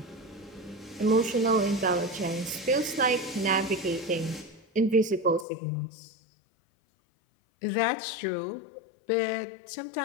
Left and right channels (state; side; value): drops out; right; at 5.5 s